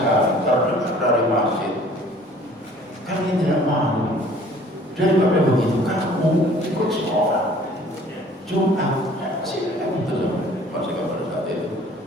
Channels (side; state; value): both; normal; correlation 0.52